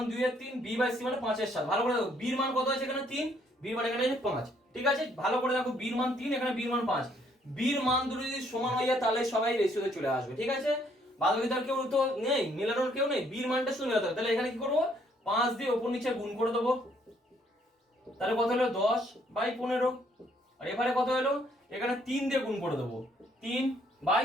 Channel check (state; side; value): normal; both; correlation 0.67